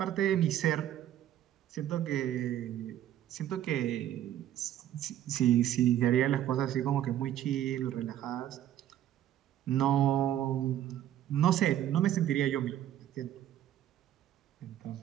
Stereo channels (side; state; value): left; quieter; 11.8 dB